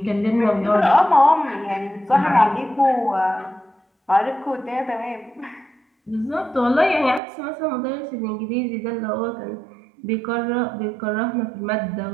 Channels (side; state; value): left; drops out; at 7.2 s